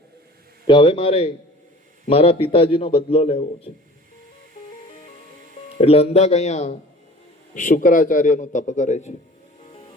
કે હવે મારે મારા પિતાજીનો બદલો લેવો છે. એટલે અંધક અહીંયા શુક્રાચાર્યનું તપ કરે છે.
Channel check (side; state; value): both; normal; correlation 0.45